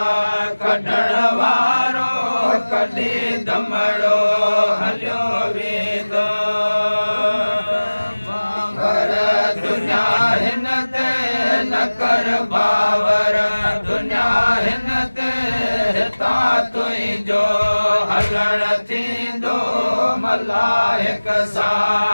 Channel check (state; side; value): inverted; both; correlation -1.00